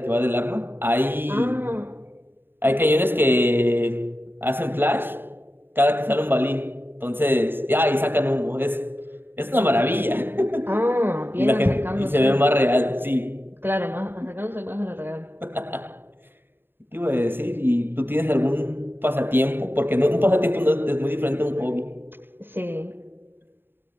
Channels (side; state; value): left; late; 0.10 ms